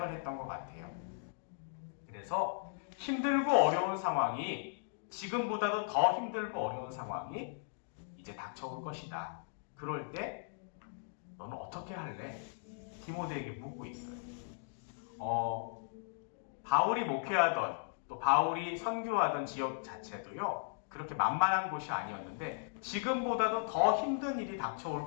했던 것 같아요. 그래서 힘들고 어려운 상황이, 지금보다도 더 힘들고 어려운 상황이 이제 닥쳐올 것이다. 그럴 때 너는 어떻게 할래? 디모데에게 묻고 있어요. 바울이 목회하던 또 바울이 선교하던 지역 자체도요, 그렇게 만만한 곳이 아니었는데 지금보다도 더 힘든 일이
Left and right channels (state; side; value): silent; right; digital silence